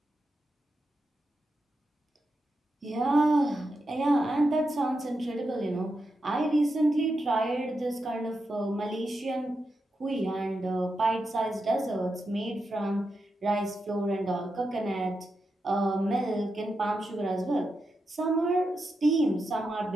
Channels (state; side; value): normal; both; correlation 0.87